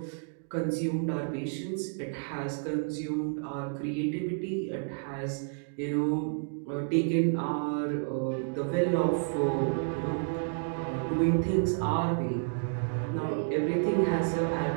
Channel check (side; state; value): left; silent; digital silence